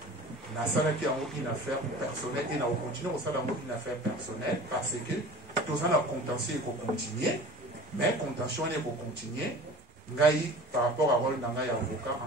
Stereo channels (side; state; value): both; normal; correlation 0.40